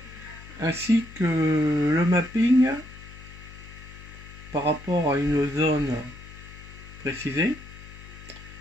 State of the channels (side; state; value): left; noise; hum, 17 dB below the sound